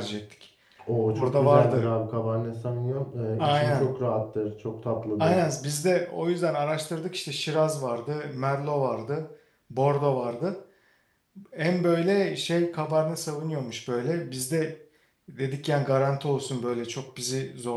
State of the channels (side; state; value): both; identical; correlation 1.00